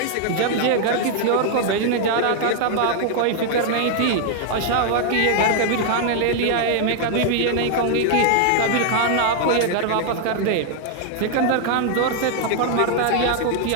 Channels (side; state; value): both; different; correlation 0.00